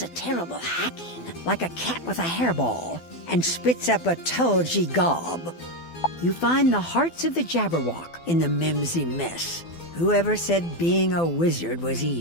a terrible hacking, like a cat with a hairball, and spits up a tulgy gob. You find the hearts of the Jabberwock in the mimsy mess. Whoever said being a wizard was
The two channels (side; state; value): right; late; 12 ms